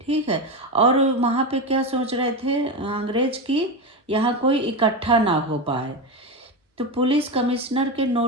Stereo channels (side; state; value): both; normal; correlation 0.16